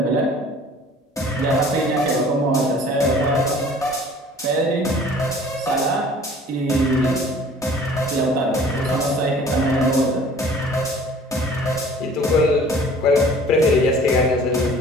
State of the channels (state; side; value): normal; both; correlation 0.49